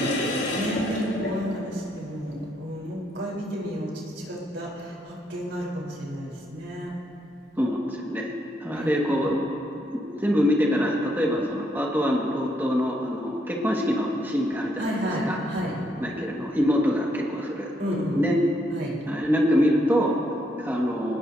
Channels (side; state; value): both; normal; correlation 0.75